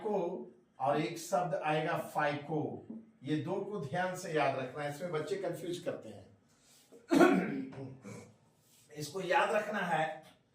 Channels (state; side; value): identical; both; correlation 1.00